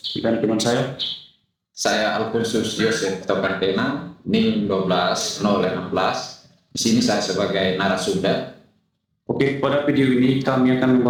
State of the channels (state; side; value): identical; both; correlation 1.00